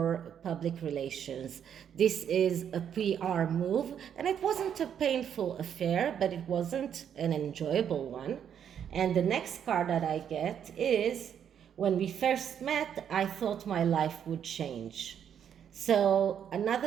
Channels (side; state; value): left; quieter; 8.7 dB